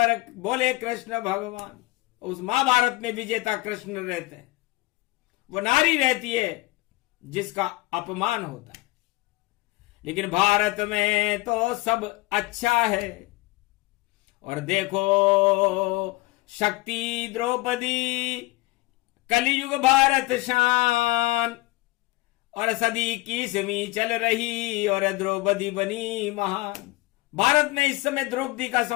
बोले कृष्ण भगवान। उस महाभारत में विजेता कृष्ण रहते हैं, वो नारी रहती है जिसका अपमान होता है। लेकिन भारत में तो सब अच्छा है। और देखो शक्ति द्रौपदी, कलियुग भारत शान, और सदी की 21वीं चल रही और द्रौपदी बनी महान। भारत में इस समय द्रौपदी का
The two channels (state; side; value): quieter; right; 20.8 dB